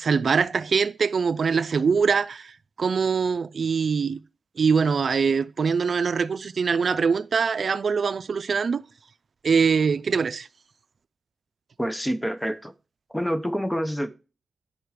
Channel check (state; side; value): quieter; left; 4.8 dB